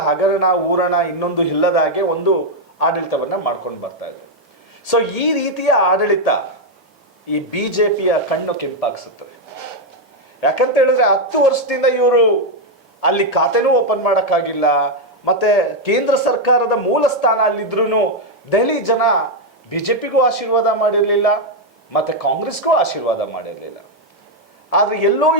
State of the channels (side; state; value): both; normal; correlation 0.01